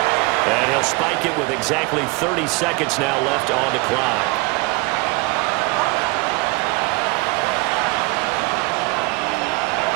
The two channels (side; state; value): left; quieter; 25.6 dB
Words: And he'll spike it with exactly 30 seconds now left on the clock.